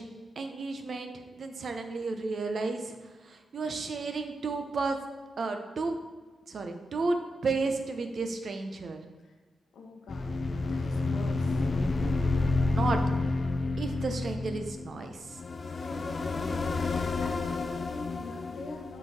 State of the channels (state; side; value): normal; both; correlation 0.87